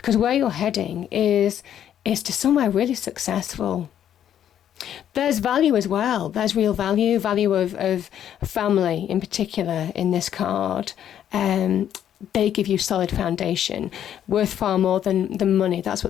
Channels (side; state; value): right; quieter; 10.2 dB